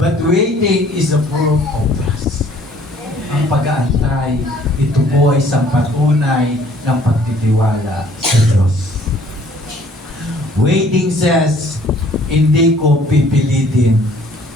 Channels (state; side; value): normal; both; correlation 0.58